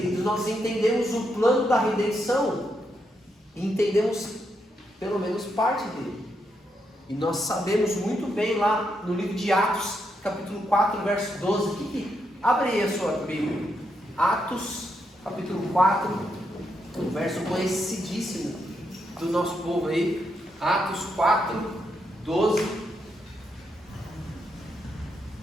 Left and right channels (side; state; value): both; normal; correlation 0.81